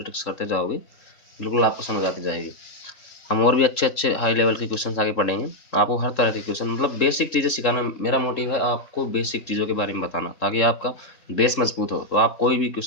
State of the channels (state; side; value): late; right; 3.7 ms